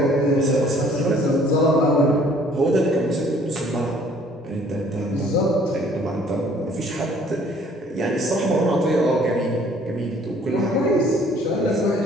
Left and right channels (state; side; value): normal; both; correlation 0.57